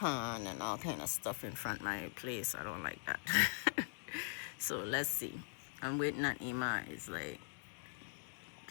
and all kind of stuff in front of my place. I don't like that. So let's see. I'm waiting on Ima. It's like,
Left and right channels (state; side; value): silent; right; digital silence